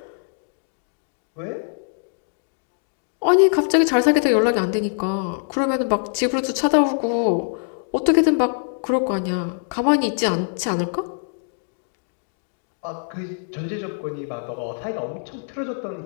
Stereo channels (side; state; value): right; silent; digital silence